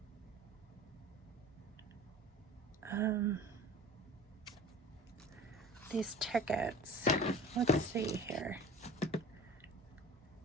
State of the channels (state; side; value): normal; both; correlation 0.39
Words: These tickets. Let's see here.